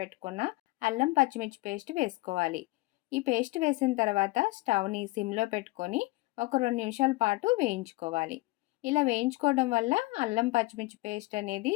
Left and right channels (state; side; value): quieter; right; 21.9 dB